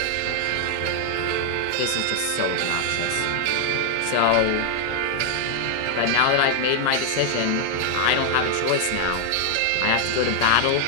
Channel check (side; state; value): both; different; correlation 0.00